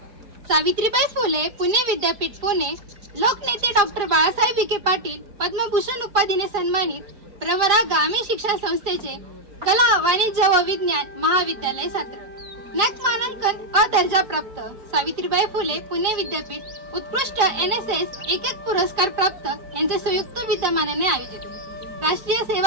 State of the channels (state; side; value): late; left; 4.9 ms